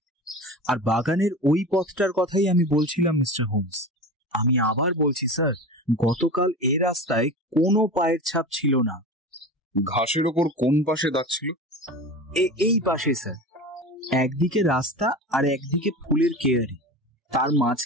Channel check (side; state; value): both; normal; correlation 0.30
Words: আর বাগানের ওই পথটার কথাই আমি বলছিলাম মিস্টার হোমস। আমি আবার বলছি স্যার, গতকাল এ রাস্তায় কোনো পায়ের ছাপ ছিল না। ঘাসের ওপর কোন পাশে দাগ ছিল? এই পাশে স্যার। একদিকে রাস্তা আর একদিকে ফুলের কেয়ারি, তার